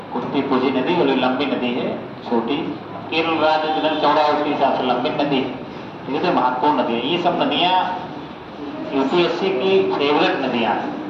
कुंती पूजी नदी, और लंबी नदी है, छोटी। केरल राज्य जितना चौड़ा है उसके हिसाब से लंबी नदी, ये तो महत्वपूर्ण नदी है। ये सब नदियाँ यूपीएससी की फेवरेट नदियाँ हैं,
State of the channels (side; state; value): both; identical; correlation 1.00